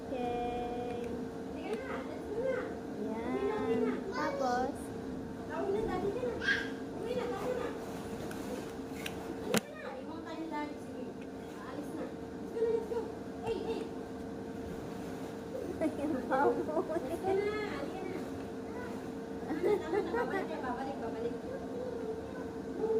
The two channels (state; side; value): identical; both; correlation 1.00